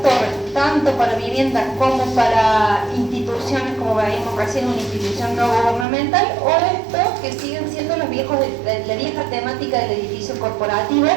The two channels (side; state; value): left; drops out; at 5.9 s